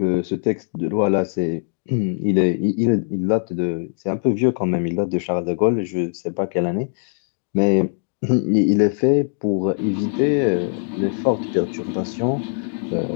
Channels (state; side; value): silent; right; digital silence